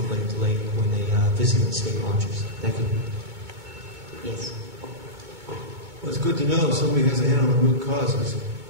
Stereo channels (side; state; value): left; late; 2.2 ms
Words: lake to lake when they visit the state launches. Thank you. Yes. Well, it's good to know somebody has a hand on the root causes.